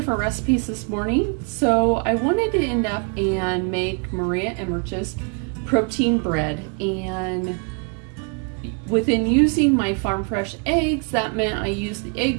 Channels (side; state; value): left; quieter; 36.4 dB